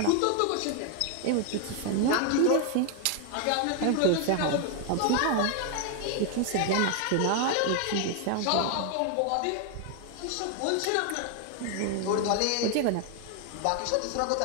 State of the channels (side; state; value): both; different; correlation 0.00